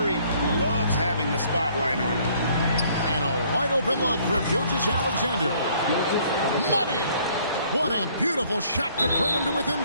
loves having the spotlight on him. And a wide open look for Gilgeous-Alexander. Money! What a beautiful shot to bring him to within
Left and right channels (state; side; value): inverted; both; correlation -0.61